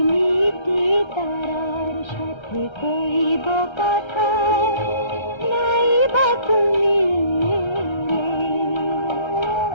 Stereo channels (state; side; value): late; right; 1.3 ms